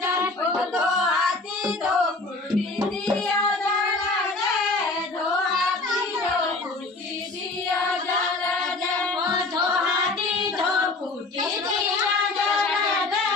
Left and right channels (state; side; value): quieter; right; 3.3 dB